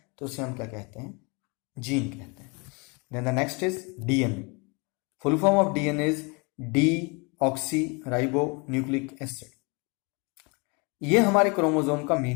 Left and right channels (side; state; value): right; quieter; 30.8 dB